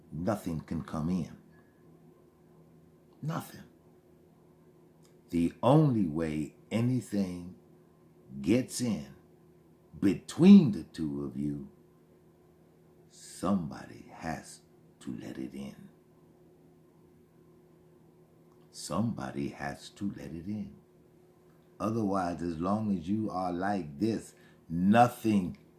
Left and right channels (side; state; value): both; identical; correlation 1.00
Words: can come in. Nothing. The only way anything gets in between the two of you, somebody has to let it in. Somebody has to let it in. Otherwise, as long as you are like this, nothing